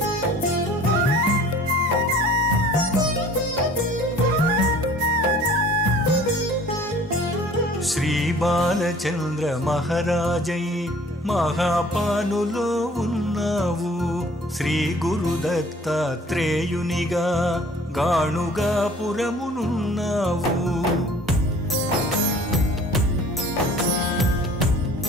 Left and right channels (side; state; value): both; normal; correlation 0.50